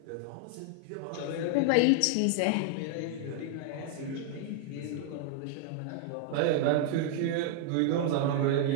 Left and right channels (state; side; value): different; both; correlation 0.00